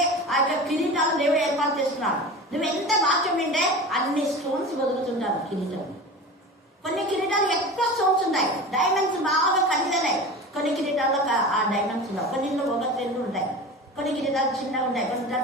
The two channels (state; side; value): normal; both; correlation 0.32